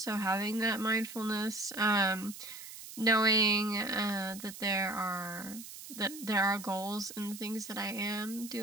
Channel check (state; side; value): noise; right; hiss, 13 dB below the sound